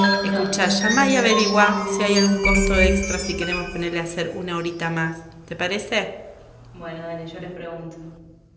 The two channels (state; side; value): identical; both; correlation 1.00